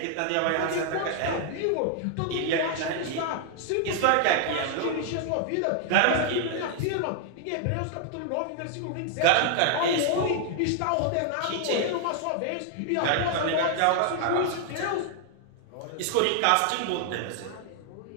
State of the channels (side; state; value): both; different; correlation 0.00